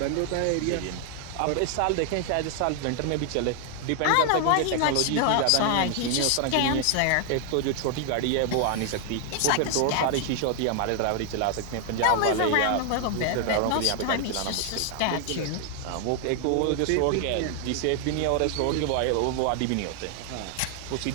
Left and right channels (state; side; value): different; both; correlation 0.00